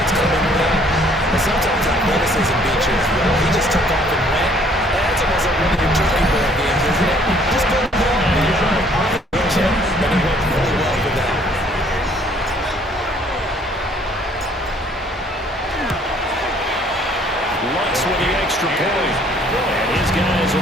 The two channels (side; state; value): both; normal; correlation 0.60